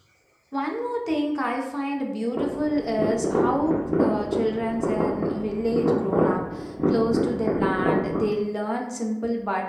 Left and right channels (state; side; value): identical; both; correlation 1.00